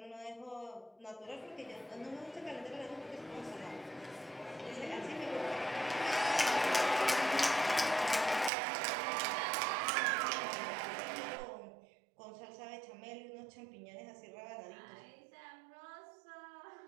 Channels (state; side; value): drops out; left; at 8.5 s